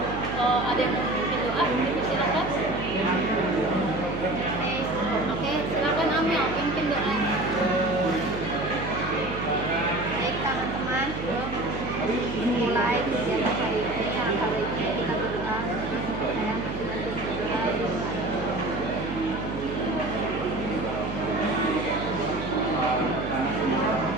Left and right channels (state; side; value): noise; right; hum, 7 dB below the sound